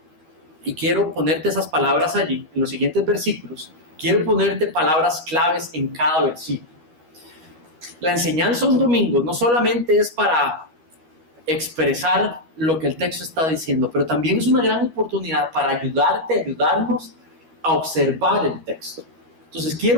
y quiero ponerte esas palabras allí, en los siguientes versículos, quiero ponerte palabras claves en cada versículo. La enseñanza un domingo no solamente es para expresar lo que el texto está diciendo, pero también es una gran oportunidad para ayudarnos a observar el texto. Entonces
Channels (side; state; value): left; late; 13 ms